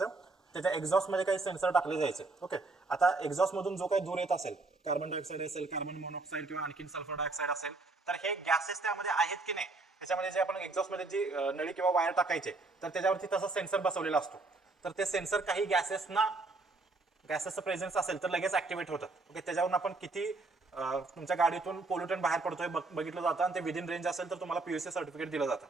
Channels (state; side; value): quieter; left; 3.4 dB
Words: त्याच्या एक्झॉस्ट मध्ये काही सेन्सर टाकले जायचे. ओके, आता एक्झॉस्ट मधून जो काही धूर येत असेल, कार्बन डायऑक्साईड असेल, कार्बन मोनॉक्साईड किंवा आणखी सल्फर डायऑक्साईड असेल, तर हे गॅसेस त्यामध्ये आहेत की नाही, त्याच्यामध्ये जे आपण एक्झॉस्ट मध्ये जी नळी किंवा वायर टाकायचे तर त्याच्यावरती तसा सेन्सर बसवलेला असतो. तर ते सेन्सर काही गॅसेसचं प्रेझेन्स असेल तर लगेच ऍक्टिव्हेट होतात. ओके, त्याच्यावरून आपण किती तुमच्या गाडीतून पोल्युटंट बाहेर पडतोय बघितलं जातं आणि ते विदिन रेंज असेल तर तुम्हाला पीयूसी सर्टिफिकेट दिलं जातं.